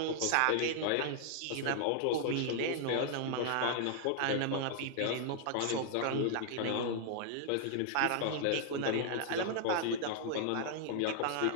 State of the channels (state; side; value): different; both; correlation -0.01